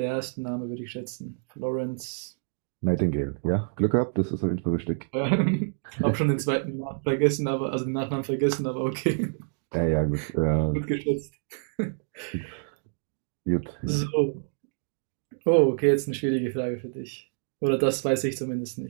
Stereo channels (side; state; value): left; silent; digital silence